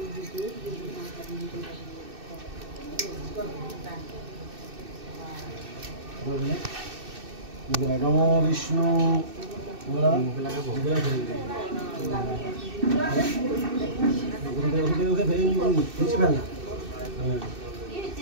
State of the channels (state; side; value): late; left; 2.6 ms